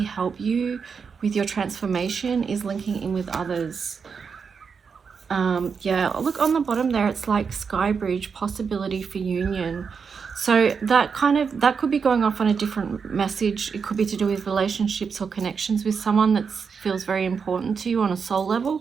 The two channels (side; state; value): left; quieter; 5.9 dB